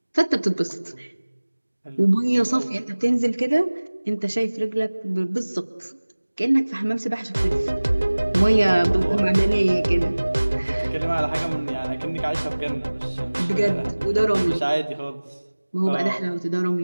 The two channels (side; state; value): both; inverted; correlation -1.00